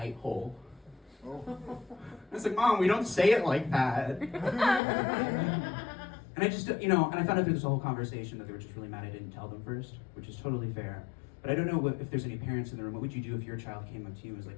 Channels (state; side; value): drops out; right; at 4.8 s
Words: hole. I was like, Mom, we don't say it like that. And I just, and I found out through this whole conversation that they were just really mad I didn't tell them first, which is totally fair. But I don't know if there's any parents in the room. What would you do if your child came up to you and was